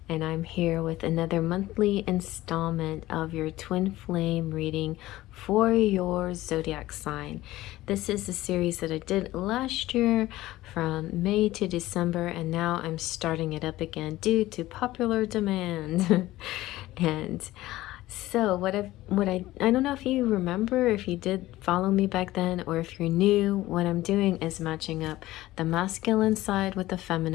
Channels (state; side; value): quieter; right; 16.6 dB